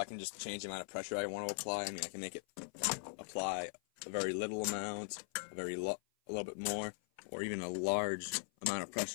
can just change the amount of pressure I want to apply. I mean, I can make it apply a very little amount, a little bit more, or even a large amount of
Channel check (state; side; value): silent; right; 51 dB below the other